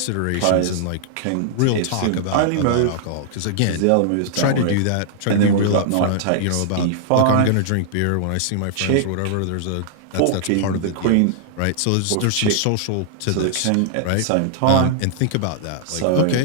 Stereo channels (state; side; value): different; both; correlation -0.01